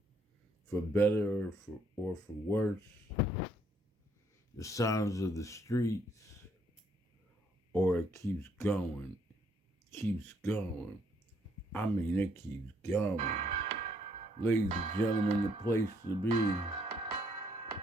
For better or for worse, the sounds of the streets, or it keeps going. I mean, it keeps going. Ladies and gentlemen, the place to be.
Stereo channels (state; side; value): normal; both; correlation 0.68